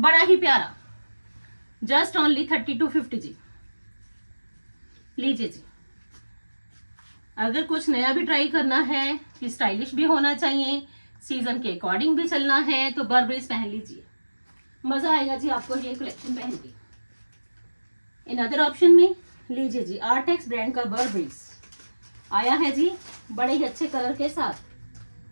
ही प्यारा। जस्ट ओनली 3250 जी। लीजिए जी, अगर कुछ नया भी ट्राई करना है कि स्टाइलिश भी होना चाहिए, सीजन के अकॉर्डिंग भी चलना है, तो बर्बरीज पहन लीजिए, मजा आएगा जी आपको ये कलेक्शन पहन के। अनदर ऑप्शन में लीजिए जी, आर्टेक्स ब्रांड का बर्बरीज आया है जी बड़े ही अच्छे कलर के साथ।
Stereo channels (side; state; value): both; inverted; correlation -1.00